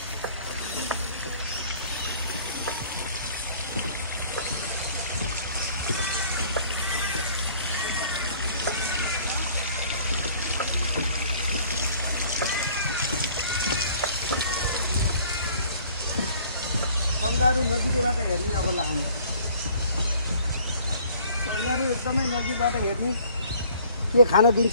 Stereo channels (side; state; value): both; inverted; correlation -0.54